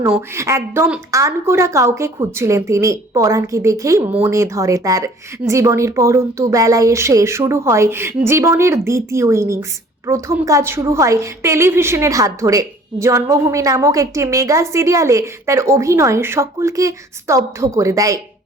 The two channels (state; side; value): normal; both; correlation 0.53